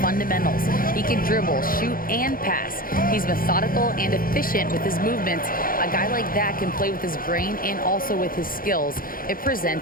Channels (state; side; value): late; right; 0.41 ms